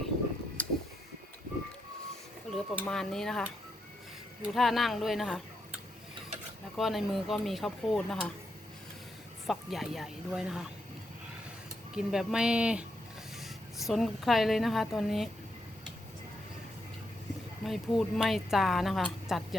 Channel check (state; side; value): normal; both; correlation 0.81